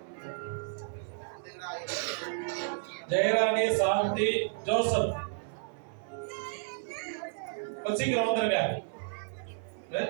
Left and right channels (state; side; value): silent; left; 56 dB below the other